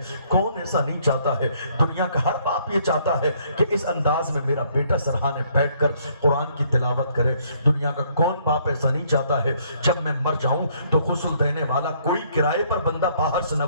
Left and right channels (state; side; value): inverted; both; correlation -0.66